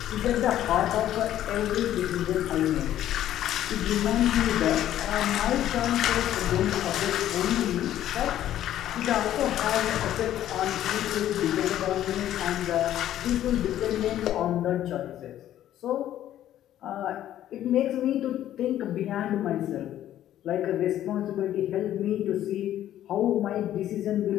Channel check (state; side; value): quieter; right; 12.2 dB